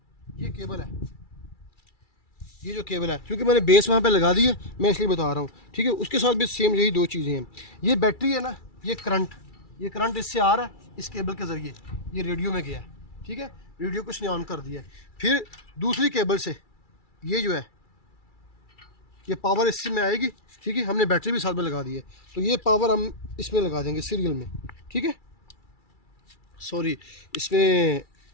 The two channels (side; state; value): right; late; 2.3 ms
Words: ये केबल है, ये जो केबल है, क्योंकि मैंने बेस वहाँ पे लगा दी है, मैं इसलिए बता रहा हूँ, ठीक है। उसके साथ भी सेम यही 2 चीज़ें हैं। ये बैटरी है ना, ये करंट इससे आ रहा है, इस केबल के ज़रिए ये रेडियो में गया है, ठीक है। रेडियो को इसने ऑन कर दिया है। फिर दूसरी केबल से ये जो है, ये पावर इससे में आएगी, ठीक है। हमने बैटरी भी साथ में लगा दी है, तो ये पावर हम इसमें लगा देंगे सीरियल में, ठीक है। सॉरी, इसमें